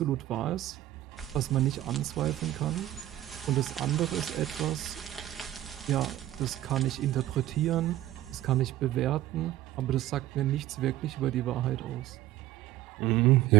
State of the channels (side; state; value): left; quieter; 14.3 dB